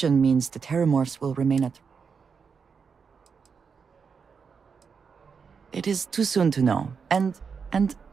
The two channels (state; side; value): quieter; left; 5.9 dB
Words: means the Terramorphs will remain at... It is too soon to know, and